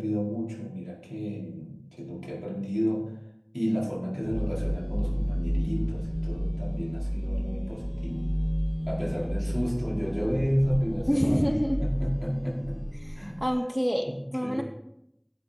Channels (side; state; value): both; identical; correlation 1.00